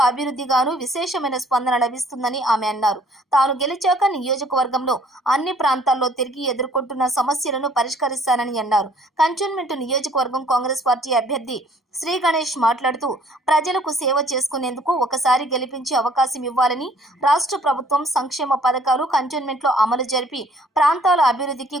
అభివృద్ధిగాను విశేషమైన స్పందన లభిస్తుందని ఆమె అన్నారు. తాను గెలిచాక నియోజకవర్గంలో అన్ని ప్రాంతాల్లో తిరిగి ఎదుర్కొంటున్న సమస్యలను పరిష్కరిస్తానని అన్నారు. కంటోన్మెంట్ నియోజకవర్గం కాంగ్రెస్ పార్టీ అభ్యర్థి శ్రీ గణేష్ మాట్లాడుతూ ప్రజలకు సేవ చేసుకునేందుకు ఒకసారి గెలిపించే అవకాశం ఇవ్వాలని, రాష్ట్ర ప్రభుత్వం సంక్షేమ పథకాలు కంటోన్మెంట్లో అమలు జరిపి ప్రాంతాల అభివృద్ధికి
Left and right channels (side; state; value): both; normal; correlation 0.58